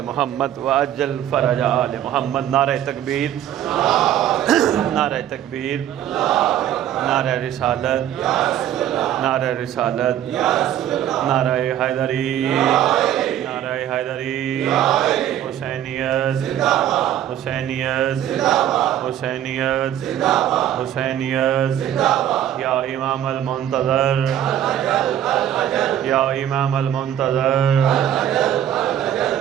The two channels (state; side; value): quieter; left; 11.1 dB